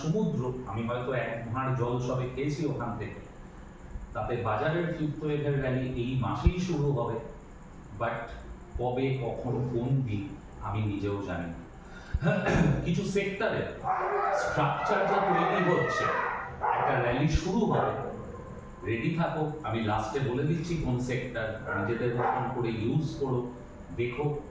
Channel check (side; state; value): both; identical; correlation 1.00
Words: সমুদ্র, আমি হয়তো এক ভাঁড় জল সবে খেয়েছি ওখান থেকে। তাতে বাজারের ফিফথ ওয়েভের র্যালি এই মাসেই শুরু হবে, বাট কবে, কখন, কোন দিন আমি নিজেও জানি না। কিছু সেক্টরে স্ট্রাকচার যা তৈরি হচ্ছে, একটা র্যালি শুরু হবে, রেডি থাকো। আমি লাস্টে বলে দিচ্ছি কোন সেক্টর, নিজেদের মতন করে ইউজ করো, দেখো